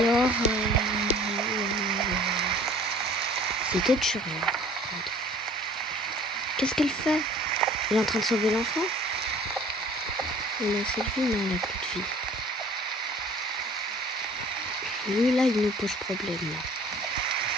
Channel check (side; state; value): both; normal; correlation 0.50